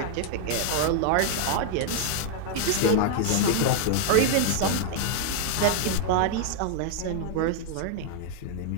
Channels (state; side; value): different; both; correlation -0.01